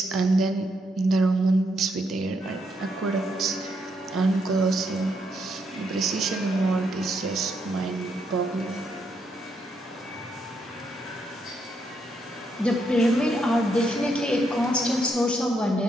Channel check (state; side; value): normal; both; correlation 0.77